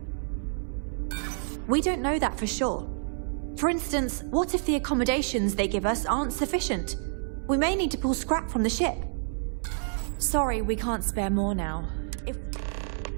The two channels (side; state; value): left; silent; 59 dB below the other